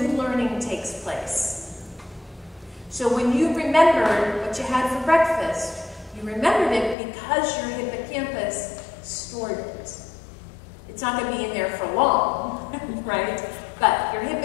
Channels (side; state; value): right; drops out; at 7.0 s